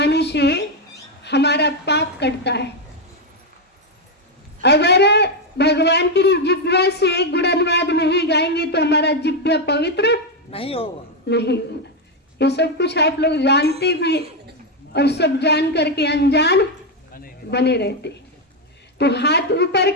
से हमारा पाप कटता है। अगर भगवान की जिह्वा से गुणानुवाद नहीं गाएंगे तो हमारा जिह्वा पवित्र नहीं होगा। ये सब कुछ आप लोग जानते भी और सब जान करके अनजान बने रहते। तो हाथ ऊपर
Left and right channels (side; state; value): both; normal; correlation 0.05